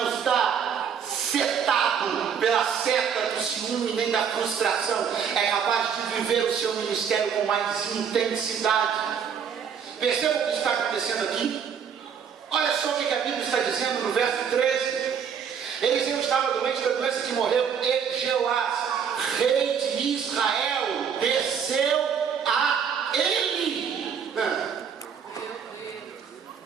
está setado pela seta do ciúme nem da frustração é capaz de viver o seu ministério com mais intensidade. Percebam o que está acontecendo aqui? Olha só o que a Bíblia está dizendo no verso 13. Eliseu estava doente da doença que morreu, e Jeoás, rei de Israel, desceu a ele.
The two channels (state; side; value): quieter; left; 7.3 dB